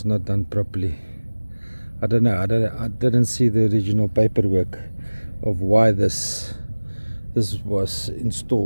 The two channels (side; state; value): both; inverted; correlation -1.00